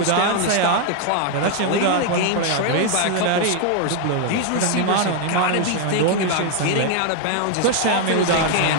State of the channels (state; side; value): different; both; correlation 0.01